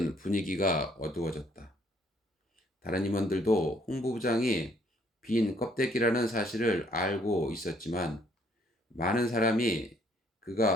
분위기가 어두워졌다. 다른 임원들도 홍보부장이 빈 껍데기라는 사실을 알고 있었지만 많은 사람이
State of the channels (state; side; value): normal; both; correlation 0.65